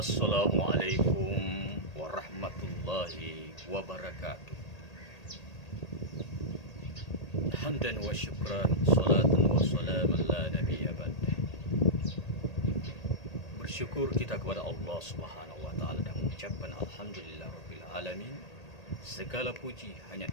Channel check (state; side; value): late; right; 1.8 ms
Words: Assalamualaikum warahmatullahi wabarakatuh. Hamdan wa syukran, salatan wa salaman la nabiyya ba'dah. Bersyukur kita kepada Allah Subhanahu wa taala dan mengucapkan alhamdulillah rabbil alamin. Segala puji hanya